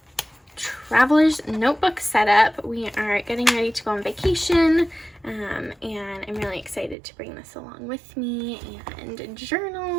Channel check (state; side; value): drops out; left; at 7.0 s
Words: traveler's notebook setup. We are getting ready to go on vacation, and I'm really excited to bring this along with me and